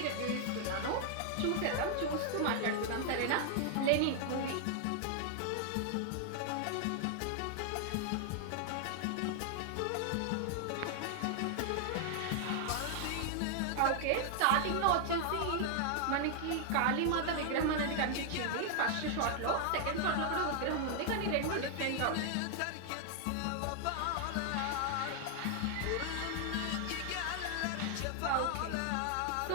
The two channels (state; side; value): different; both; correlation 0.00